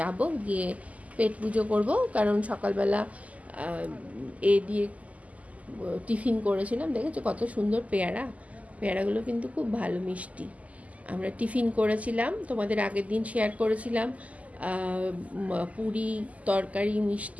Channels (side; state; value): left; late; 0.072 ms